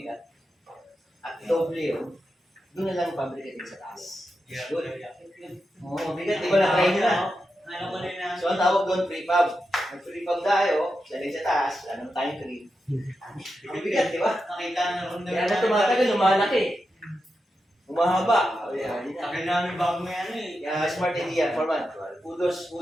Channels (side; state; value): both; normal; correlation 0.88